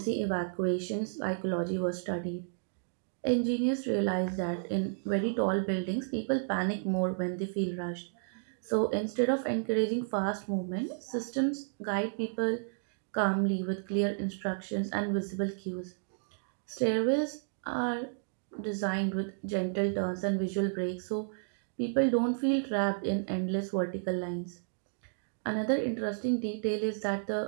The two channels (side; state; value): left; silent; digital silence